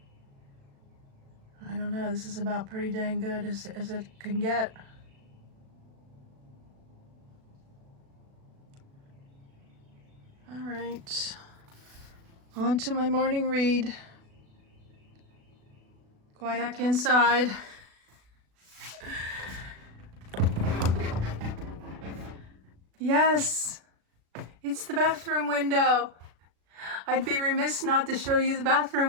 I don't know, this is about pretty dang good as it can get. All right, on to my morning read. Quiet back inside. Yes, it's the bathroom window. I'd be remiss not to show you the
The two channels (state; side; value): late; left; 36 ms